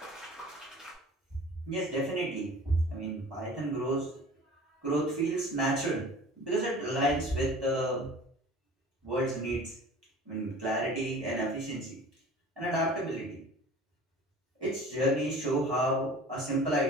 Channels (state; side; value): normal; both; correlation 0.43